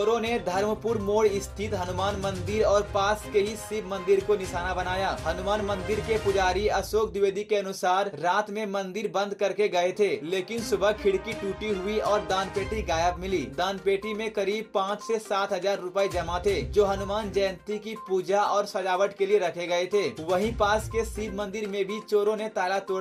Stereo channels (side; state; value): both; identical; correlation 1.00